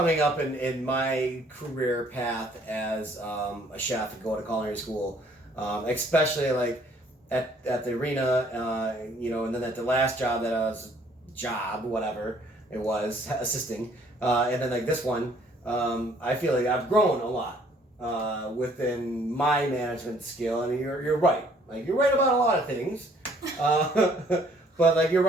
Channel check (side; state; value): both; normal; correlation 0.61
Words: up in my career path as a chef and going to culinary school, especially, like, at the arena, and then at the last job that I was, whatever it was, assisting, and then, like, this one, I feel like I've grown a lot within my management skill, and you're right. Like, you're right about a lot of things, but, like, you're